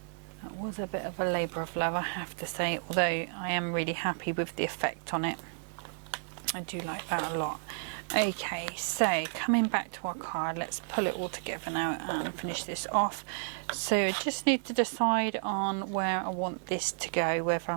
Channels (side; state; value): left; silent; digital silence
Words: that was a bit of a labour of love, I have to say, although I am really happy with the effect on it. I do like that a lot. Okay, so coming back to our card, let's pull it all together now and finish this off. So I just need to decide on where I want this to go, whether